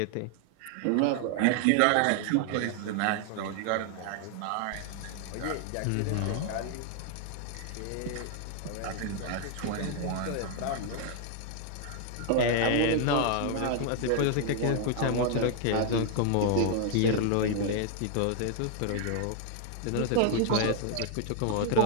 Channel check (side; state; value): both; different; correlation 0.00